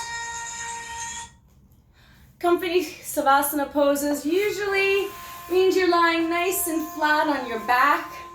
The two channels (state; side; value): identical; both; correlation 1.00